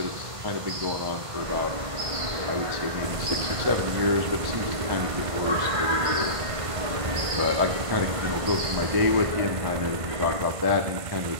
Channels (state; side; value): late; left; 1.5 ms